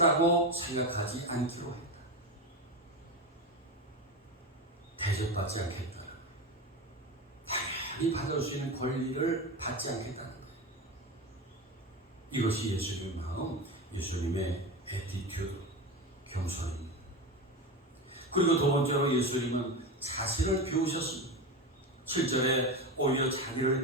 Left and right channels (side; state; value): both; normal; correlation 0.21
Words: 생각하지 않기로 했다. 대접받지 않겠다. 당연히 받을 수 있는 권리를 받지 않겠다는 거예요. 이것이 예수님의 마음, 예수님의 애티튜드, 겸손입니다. 그리고 두 번째로 예수님은 자신을 비우셨습니다. 7절에 오히려